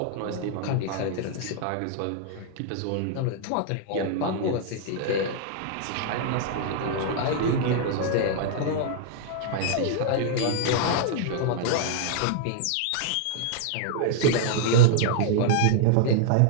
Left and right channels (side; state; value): both; different; correlation -0.01